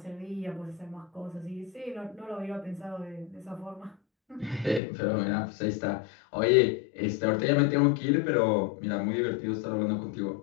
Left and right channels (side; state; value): right; drops out; at 4.8 s